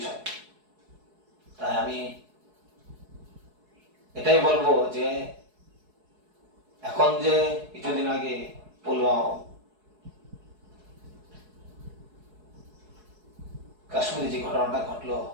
তাই আমি এটাই বলবো যে এখন যে কিছুদিন আগে কাশ্মীরে যে ঘটনাটা ঘটলো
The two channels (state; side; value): late; left; 4.7 ms